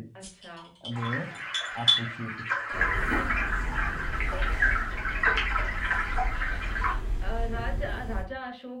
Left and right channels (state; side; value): identical; both; correlation 1.00